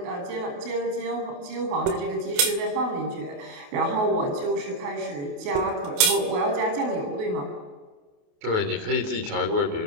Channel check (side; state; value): left; late; 28 ms